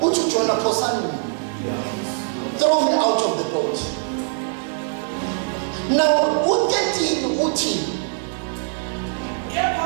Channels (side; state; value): left; silent; 60 dB below the other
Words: Uthi uJona phosani. Throw me out of the boat. Now u13 uthi Kepha